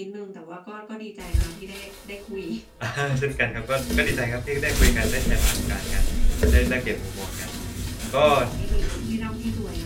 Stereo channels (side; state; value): both; identical; correlation 1.00